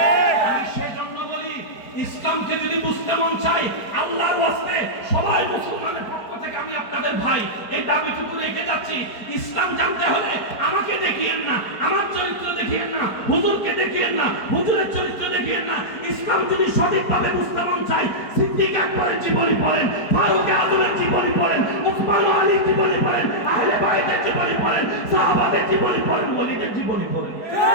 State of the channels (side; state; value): right; late; 4.8 ms